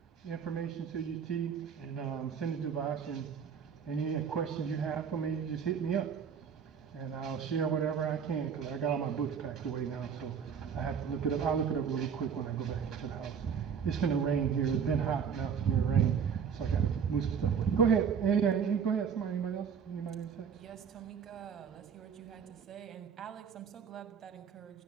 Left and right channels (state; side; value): quieter; left; 7.0 dB